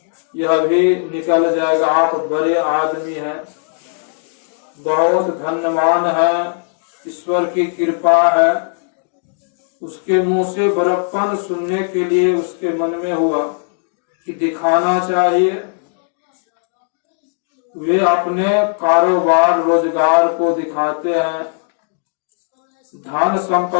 यह भी निकल जाएगा, आप बड़े आदमी हैं, बहुत धन्यवान है, ईश्वर की कृपा है। उसके मुंह से बड़प्पन सुनने के लिए उसके मन में हुआ कि दिखाना चाहिए। वे अपने कारोबार रोजगार को दिखाते हैं, धन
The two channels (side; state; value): right; silent; digital silence